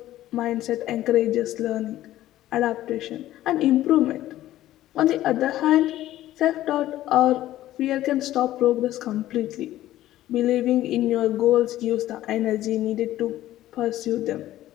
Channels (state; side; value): quieter; right; 14.3 dB